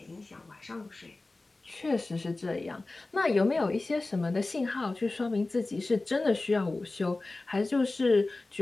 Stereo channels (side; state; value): right; quieter; 3.2 dB